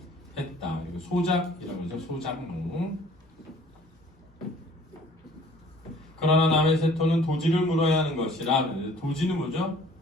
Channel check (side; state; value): both; normal; correlation 0.53